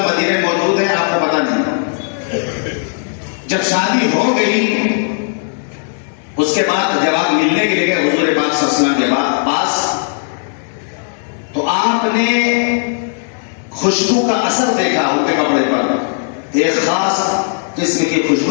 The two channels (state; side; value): silent; right; 66 dB below the other